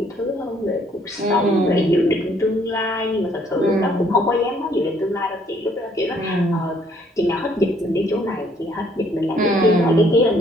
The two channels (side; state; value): both; normal; correlation 0.65